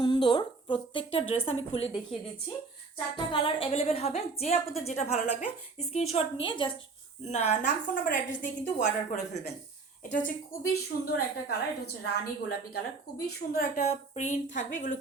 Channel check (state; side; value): quieter; left; 4.2 dB